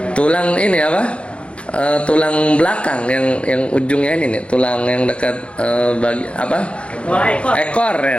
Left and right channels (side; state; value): right; late; 0.060 ms